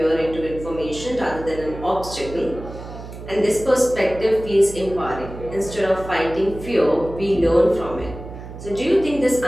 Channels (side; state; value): right; noise; hum, 12 dB below the sound